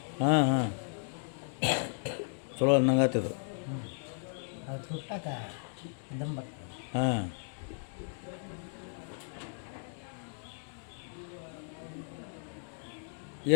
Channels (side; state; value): right; silent; 55 dB below the other